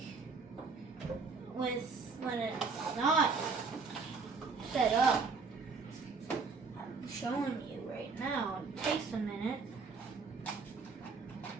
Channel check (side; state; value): left; quieter; 4.7 dB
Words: when it's not set up. I'm showing you right now. It takes a minute.